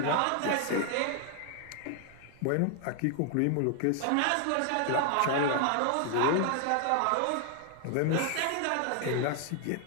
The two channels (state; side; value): different; both; correlation 0.00